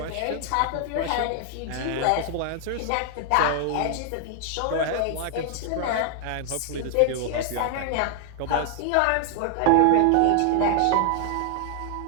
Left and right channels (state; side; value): different; both; correlation 0.00